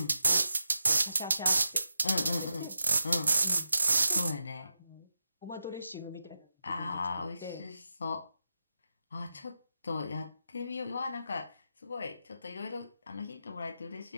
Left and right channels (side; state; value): both; inverted; correlation -0.87